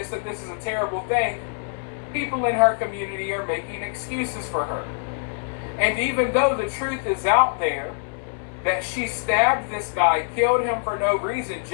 that this is a terrible thing, people in her community are making excuses for her. And even though the truth is out there, that she stabbed this guy, killed him for no reason,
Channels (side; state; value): right; silent; 62 dB below the other